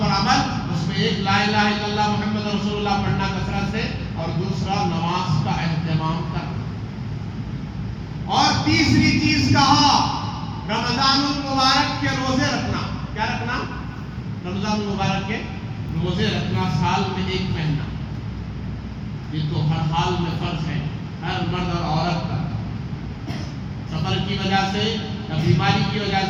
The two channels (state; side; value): identical; both; correlation 1.00